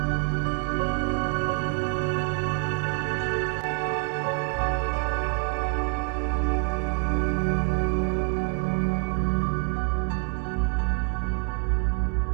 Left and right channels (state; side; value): quieter; left; 36.1 dB